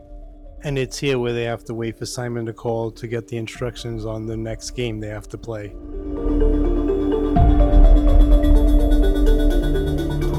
and it's here where they have to wait for Simon to call to get the instructions on the next game they have to play.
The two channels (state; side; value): identical; both; correlation 1.00